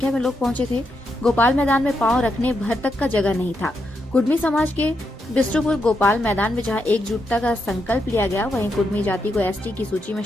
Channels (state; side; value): normal; both; correlation 0.82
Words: में लोग पहुंचे थे। गोपाल मैदान में पांव रखने भर तक का जगह नहीं था। कुर्मी समाज के बिष्ट्रपुर गोपाल मैदान में जहां एकजुटता का संकल्प लिया गया, वहीं कुर्मी जाति को एसटी की सूची में